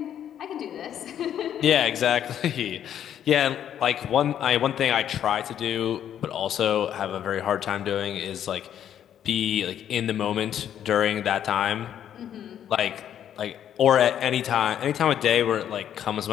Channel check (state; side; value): quieter; right; 10.0 dB